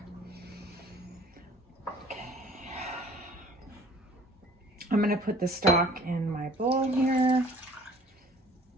Okay. I'm gonna put the stock in my bowl here.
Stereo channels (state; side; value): normal; both; correlation 0.51